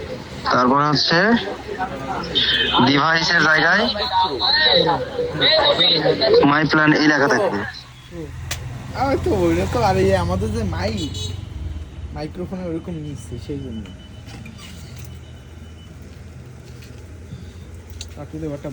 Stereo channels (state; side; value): identical; both; correlation 1.00